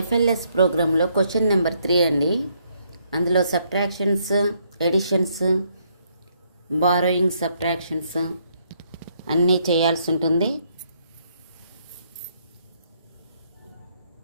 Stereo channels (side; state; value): both; inverted; correlation -0.71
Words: ప్రోగ్రాంలో question number 3 అండి. అందులో సబ్ట్రాక్షన్స్, ఎడిషన్స్, బారోయింగ్, సబ్ట్రాక్షన్స్ అన్నీ చేయాల్సి ఉంటుంది.